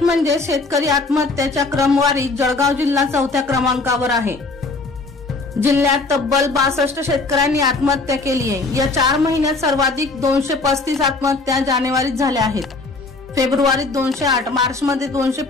म्हणजे शेतकरी आत्महत्याच्या क्रमवारीत जळगाव जिल्हा 4थ्या क्रमांकावर आहे। जिल्ह्यात तब्बल 62 शेतकऱ्यांनी आत्महत्या केली आहे। या 4 महिन्यात सर्वाधिक 235 आत्महत्या जानेवारीत झाल्या आहेत। फेब्रुवारीत 208, मार्चमध्ये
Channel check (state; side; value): quieter; right; 3.6 dB